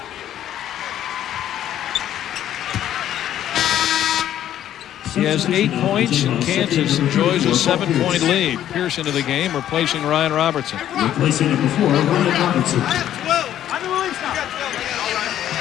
He has 8 points, and Kansas enjoys a 7-point lead. Pierce into the game, replacing Ryan Robertson. Replacing number 4, Ryan Robertson.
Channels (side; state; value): right; quieter; 11.4 dB